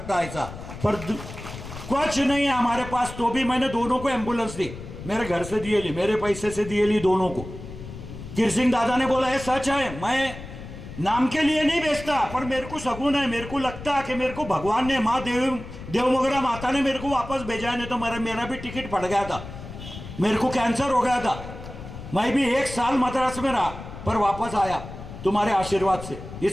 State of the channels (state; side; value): noise; left; rumble, 12 dB below the sound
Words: ऐसा। पर कुछ नहीं है हमारे पास, तो भी मैंने दोनों को एम्बुलेंस दी, मेरे घर से दिए ली, मेरे पैसे से दिए ली दोनों को। किरसिंह दादा ने बोला ये सच है, मैं नाम के लिए नहीं बेचता, पर मेरे को शगुन है, मेरे को लगता है कि मेरे को भगवान ने, माँ देवमोगरा माता ने मेरे को वापस भेजा है, नहीं तो मेरा भी टिकट फट गया था, मेरे को कैंसर हो गया था। मैं भी 1 साल मद्रास में रहा, पर वापस आया तुम्हारे आशीर्वाद से।